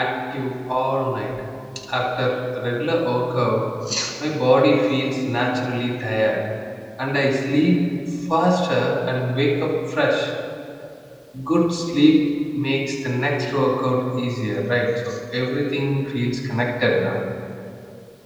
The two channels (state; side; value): identical; both; correlation 1.00